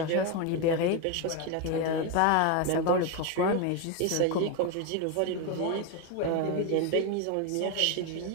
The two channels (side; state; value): both; different; correlation 0.02